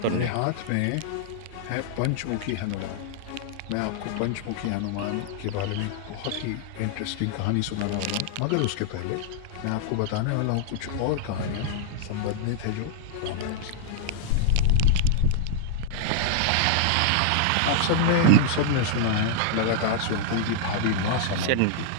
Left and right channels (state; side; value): different; both; correlation -0.01